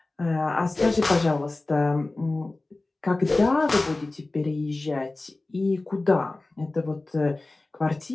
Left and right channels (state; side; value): quieter; right; 3.0 dB